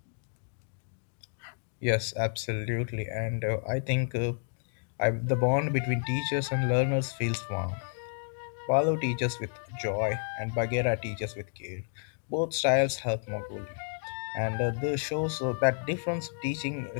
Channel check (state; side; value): silent; right; digital silence